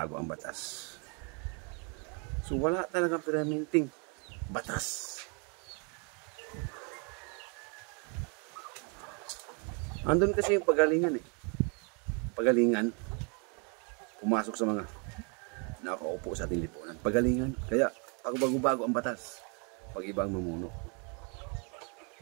ang batas. So wala talagang permanenteng batas. Andun kasi yung pagalingan eh. Pagalingan, pumasok sa mga nakaupo sa ating lipunan. Pagalingan, kaya bago-bago ang batas. Pag iba ang mamuno.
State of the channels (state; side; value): quieter; left; 35.9 dB